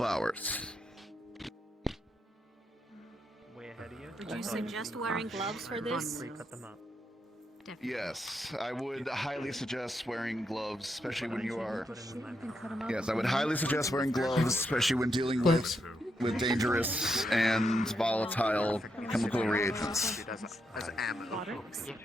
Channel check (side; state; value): both; normal; correlation 0.81